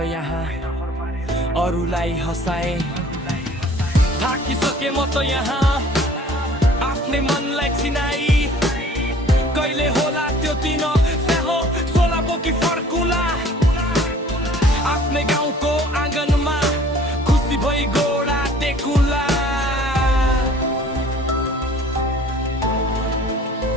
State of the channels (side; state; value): both; normal; correlation 0.51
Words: यहाँ अरूलाई हँसाए। थाकिसके म त यहाँ आफ्नै मनलाई चिनाई कहिले होला त्यो दिन स्याहो सोलाको कि फर्कुला आफ्नै गाउँको आँगनमा खुसी भई गोडा टेकुला।